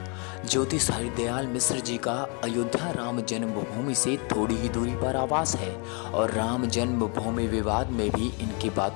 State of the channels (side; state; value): right; quieter; 35.0 dB